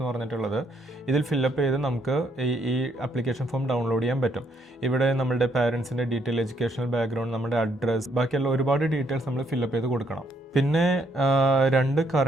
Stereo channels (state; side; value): normal; both; correlation 0.72